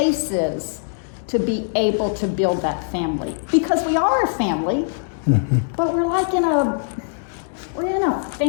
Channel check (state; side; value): silent; right; digital silence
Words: to be able to build that family. Because we are a family, but we're like we're in a